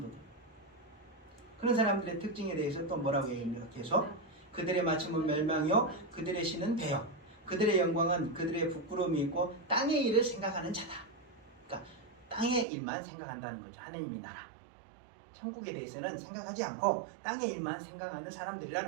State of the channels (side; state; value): left; drops out; at 12.7 s